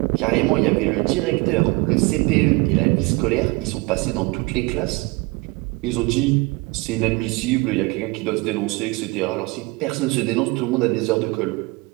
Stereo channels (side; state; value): left; quieter; 25.4 dB